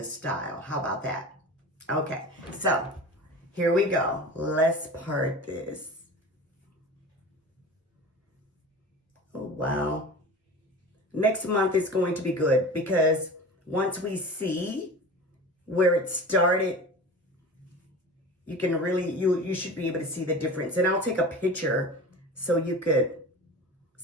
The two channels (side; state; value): both; normal; correlation 0.34